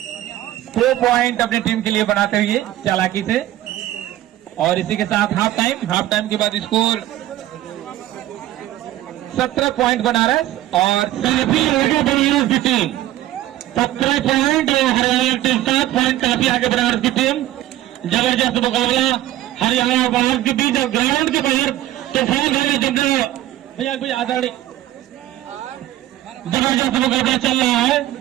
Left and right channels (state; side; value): quieter; left; 14.3 dB